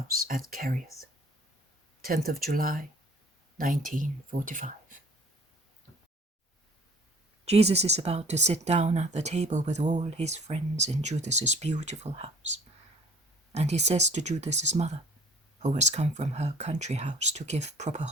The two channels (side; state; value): both; normal; correlation 0.52